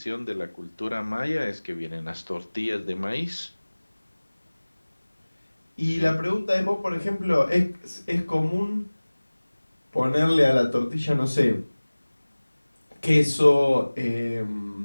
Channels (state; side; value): inverted; both; correlation -1.00